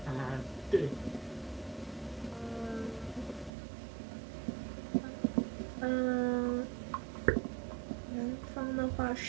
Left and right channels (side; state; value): left; drops out; at 3.5 s